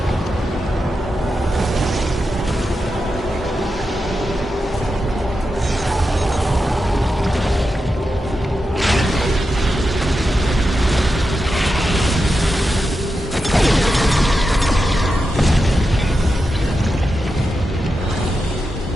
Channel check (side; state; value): both; normal; correlation 0.89